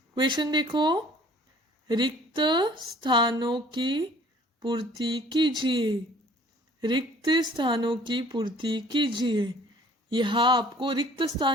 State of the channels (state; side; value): normal; both; correlation 0.53